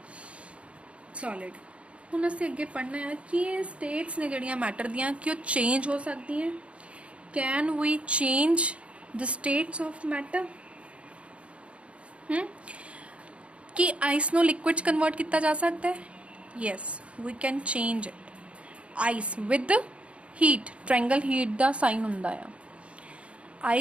सॉलिड। ਹੁਣ ਅਸੀਂ ਅੱਗੇ ਪੜ੍ਹਨਾ ਹੈ ਕਿ ਇਹ ਸਟੇਟਸ ਨੇ ਜਿਹੜੀਆਂ ਮੈਟਰ ਦੀਆਂ ਕਿ ਉਹ ਚੇਂਜ ਹੋ ਸਕਦੀਆਂ। Can we change the states of matter? ਕਿ ਆਈਸ ਨੂੰ ਲਿਕੁਇਡ 'ਚ ਕਨਵਰਟ ਕੀਤਾ ਜਾ ਸਕਦਾ ਹੈ? Yes, we can change it. Ice with heat, triangle heat ਦਾ ਸਾਈਨ ਹੁੰਦਾ ਆ।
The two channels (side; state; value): left; late; 0.061 ms